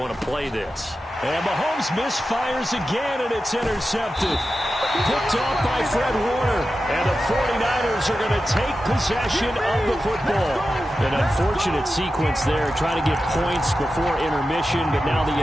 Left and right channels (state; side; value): normal; both; correlation 0.92